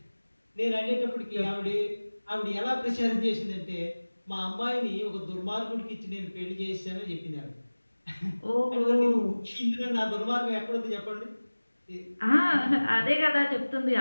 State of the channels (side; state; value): both; inverted; correlation -1.00